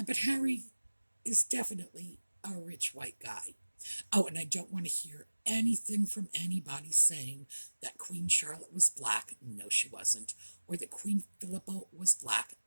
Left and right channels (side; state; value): both; inverted; correlation -1.00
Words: Harry is definitely a rich white guy. Oh, and I don't want to hear anything from anybody saying that Queen Charlotte was black. No, she wasn't. Or that Queen Philippa was black.